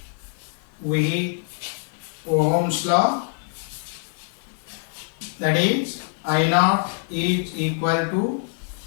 with Ohm's law, that is I naught is equal to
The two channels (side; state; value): right; silent; digital silence